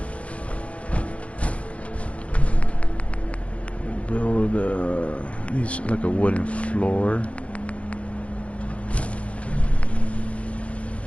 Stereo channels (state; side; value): late; right; 0.063 ms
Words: Needs like a wooden floor.